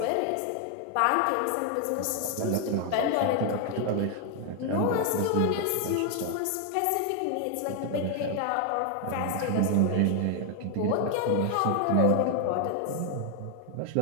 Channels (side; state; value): both; different; correlation 0.00